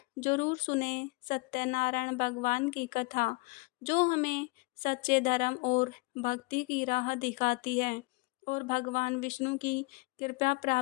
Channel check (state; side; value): quieter; right; 27.3 dB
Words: जरूर सुने सत्यनारायण भगवान की कथा, जो हमें सच्चे धर्म और भक्ति की राह दिखाती है और भगवान विष्णु की कृपा